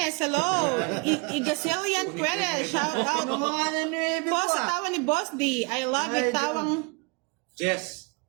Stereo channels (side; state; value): left; quieter; 31.6 dB